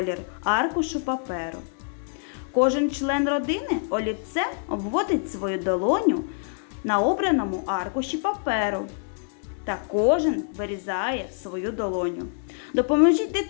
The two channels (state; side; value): silent; right; digital silence